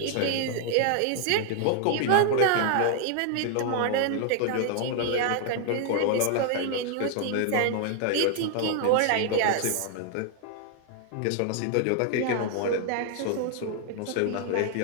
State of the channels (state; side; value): different; both; correlation 0.00